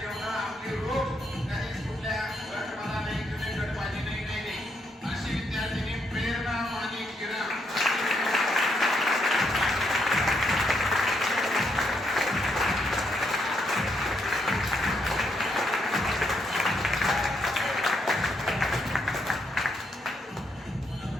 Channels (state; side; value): normal; both; correlation 0.76